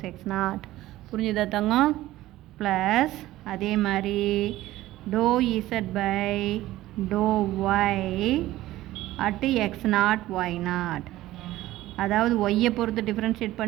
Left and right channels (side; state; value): left; quieter; 15.9 dB